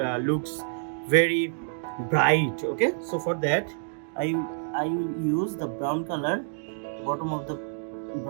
looks very bright. Okay, so for that I will use the brown color bottom of the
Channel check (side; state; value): left; silent; digital silence